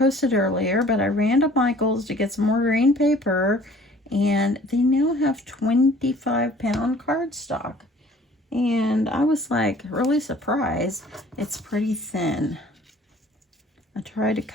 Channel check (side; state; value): both; normal; correlation 0.52